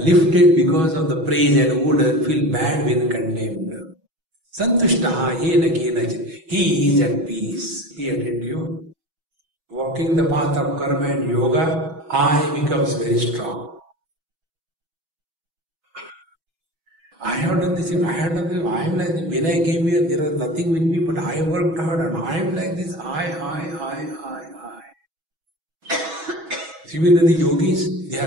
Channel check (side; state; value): left; late; 6.2 ms